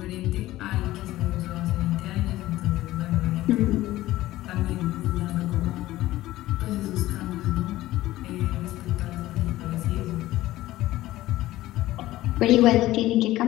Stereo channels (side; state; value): right; quieter; 16.1 dB